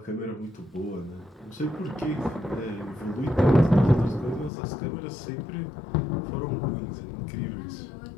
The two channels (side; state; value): right; drops out; at 4.5 s